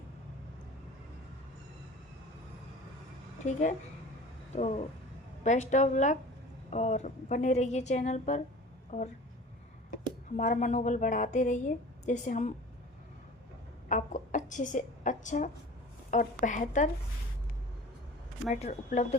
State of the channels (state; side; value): normal; both; correlation 0.40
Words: ठीक है, तो बेस्ट ऑफ लक, और बने रहिए चैनल पर, और हमारा मनोबल बढ़ाते रहिए, जैसे हम आपको अच्छे से अच्छा और बेहतर मैटर उपलब्ध